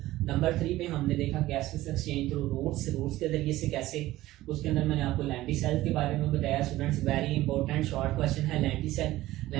number 3 पे हमने देखा गैसेस एक्सचेंज थ्रू रूट्स के जरिए से कैसे, उसके अंदर मैंने आपको लेंटिसेल्स के बारे में बताया। Students very important short question है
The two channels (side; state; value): left; quieter; 16.4 dB